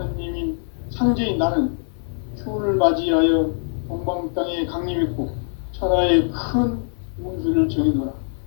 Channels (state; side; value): silent; right; 56 dB below the other